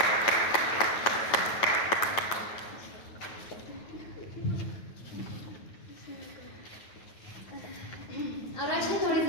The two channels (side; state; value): right; late; 8.9 ms